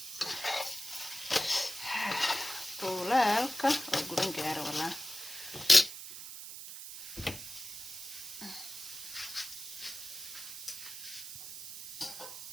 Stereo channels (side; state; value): right; noise; hiss, 10 dB below the sound